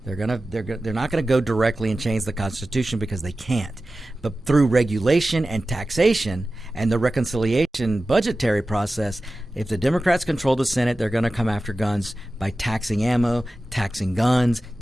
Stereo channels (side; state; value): both; normal; correlation 0.95